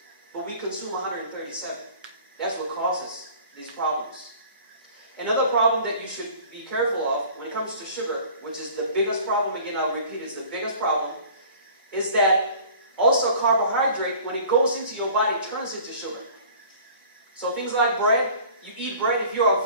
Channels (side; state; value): both; inverted; correlation -0.47